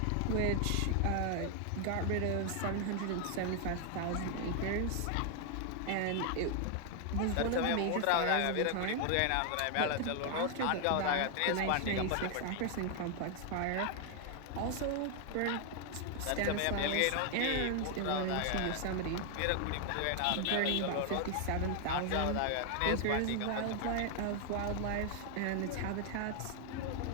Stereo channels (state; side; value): different; both; correlation 0.00